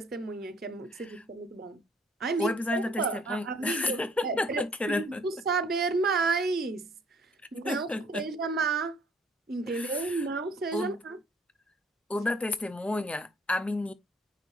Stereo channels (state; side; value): normal; both; correlation 0.60